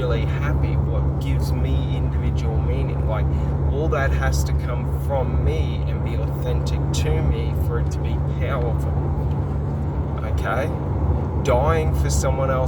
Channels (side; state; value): both; identical; correlation 1.00